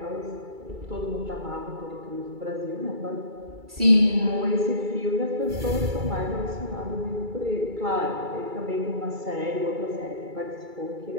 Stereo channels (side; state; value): left; late; 2.3 ms